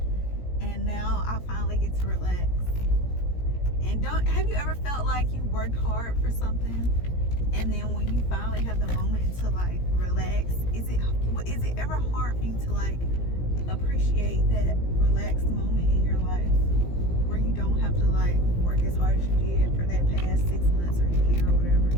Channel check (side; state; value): right; late; 17 ms